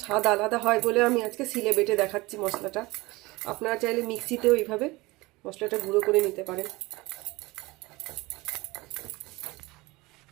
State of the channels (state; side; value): quieter; left; 21.9 dB